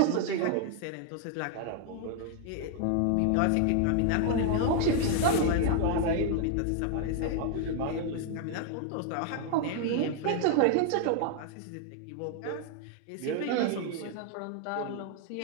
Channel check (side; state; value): both; different; correlation 0.00